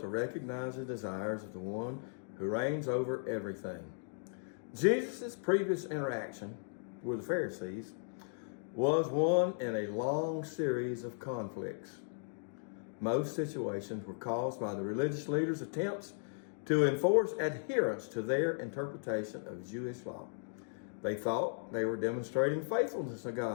recognize the desires of the one who reigns over everything. Jesus' previous interaction with the Pharisees was one in a long series of conflicts. Most situations were caused by the religious leaders' attempts to enforce adherence to their interpretation of Jewish law. They thought they were demonstrating faithfulness to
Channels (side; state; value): right; silent; digital silence